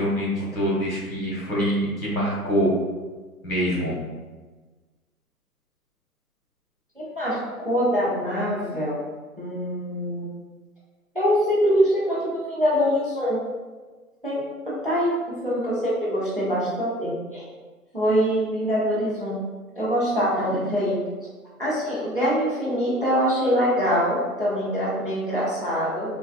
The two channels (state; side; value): normal; both; correlation 0.47